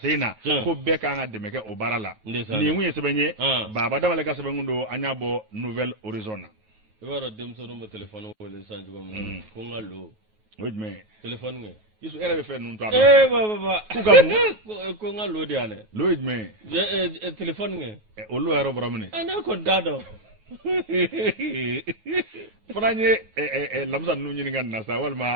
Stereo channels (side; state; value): left; late; 9.3 ms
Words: sen na ko bɛɛ kan ka dɛmɛ kɛ o baara la nin kun ye sɛbɛn ye Baba Damale ka sɛbɛn kun don an y'a bɔ Nouvelle Horizon na i b'a dɔn denmisɛnninw bɛ téléphone wele sisan cogo min ko n ka lo o ye jumɛn ye téléphone kɛ Yusu e yɛrɛ bɛ fɛn ninnu to a dɔn baba k'u ka mun ko n ka lo de yan dɛ lo ye jumɛn ye téléphone kɛ o lo yɛrɛ bɔra min ne kɔni t'a dɔn fana ye lamisa ninnu ɲininka nin na sa